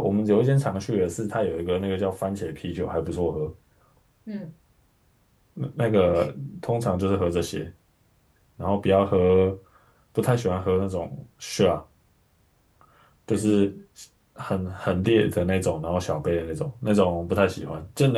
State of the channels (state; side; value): identical; both; correlation 1.00